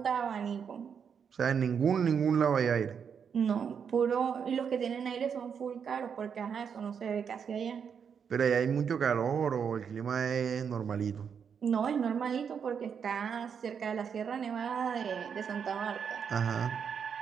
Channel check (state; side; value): quieter; left; 7.0 dB